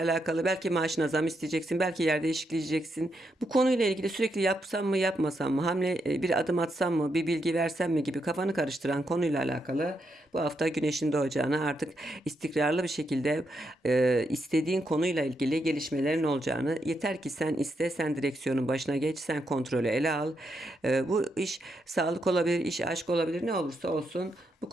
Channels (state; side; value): normal; both; correlation 0.81